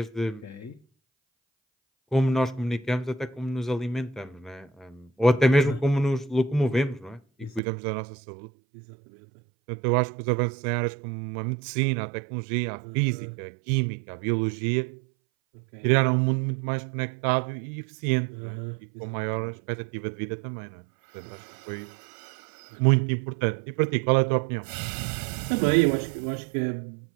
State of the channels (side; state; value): left; drops out; at 7.6 s